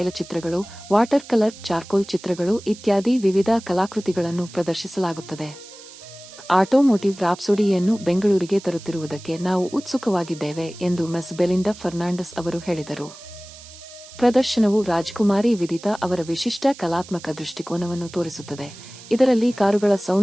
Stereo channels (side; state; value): right; noise; hiss, 18 dB below the sound